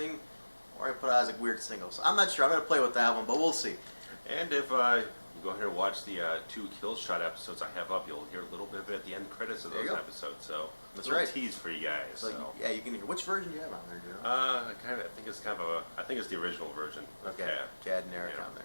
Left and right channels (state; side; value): inverted; both; correlation -1.00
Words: or I put it as a weird single. So I'm not sure. I'm going to play with that one, but we'll see. And if you go ahead and watch the 2 Kill Shot episodes I have up, you'll hear a little bit of it at the end credits of those episodes. So that's a little tease for you guys. So yeah, you can hear. Which version do you have on there, Joe? I think it's the original version. Okay, Chad and Eric on